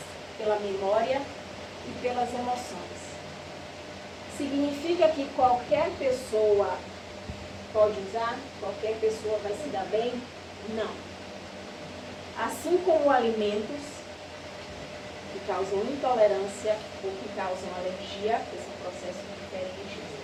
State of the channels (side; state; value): both; identical; correlation 1.00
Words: memória e pelas emoções. Significa que qualquer pessoa pode usar? Qualquer pessoa vai se dar bem? Não. Assim como alimentos que causam intolerância ou que causam alergia, que são processos diferentes,